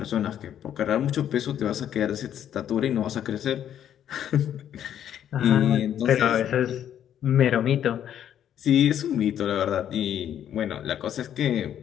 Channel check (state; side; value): quieter; right; 10.1 dB